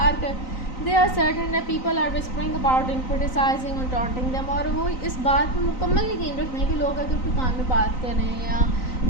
They are certain that people are whispering about and criticizing and taunting them. और वो इस बात में मुकम्मल यकीन रखते हैं कि लोग अगर कोई कान में बात कर रहे हैं या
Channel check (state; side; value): late; right; 3.9 ms